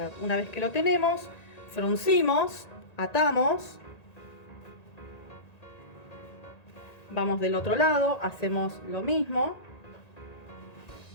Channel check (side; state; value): right; late; 1.9 ms